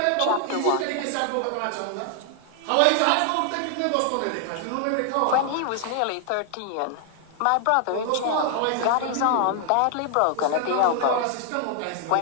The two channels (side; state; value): both; different; correlation 0.00